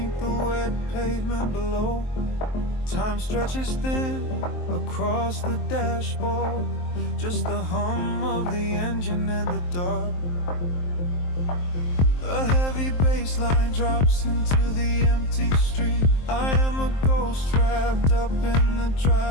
the wet pavement below. Time stretches thin across the dashboard. Just the hum of the engine in the dark. A heavy bass line drops into the empty street. I am a ghost trapped up in the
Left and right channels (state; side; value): late; right; 23 ms